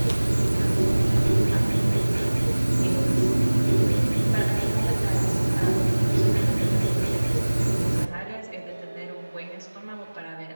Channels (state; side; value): inverted; both; correlation -1.00